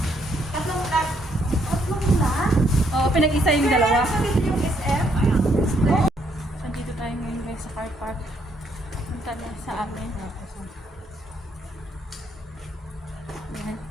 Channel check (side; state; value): both; normal; correlation 0.72